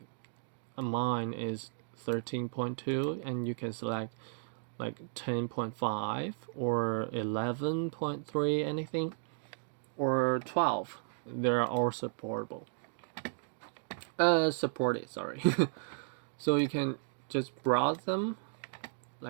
mine is 13.2, and you can select like 10.5 or 11.3, anything, or 12. They're all supportable. Supported, sorry. So you can just browse them.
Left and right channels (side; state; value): left; silent; digital silence